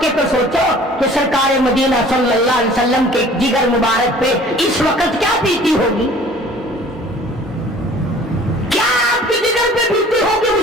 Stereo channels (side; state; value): both; normal; correlation 0.49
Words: کے تو سوچو کہ سرکار مدینہ صلی اللہ علیہ وسلم کے جگر مبارک پہ اس وقت کیا بیتی ہوگی، کیا آپ کے جگر پہ بیتی ہوگی